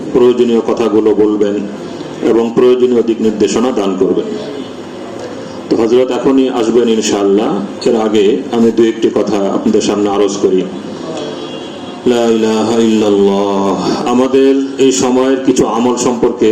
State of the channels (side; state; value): both; identical; correlation 1.00